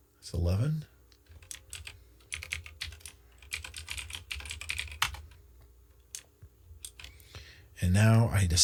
It's 11. And now I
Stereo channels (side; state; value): both; identical; correlation 1.00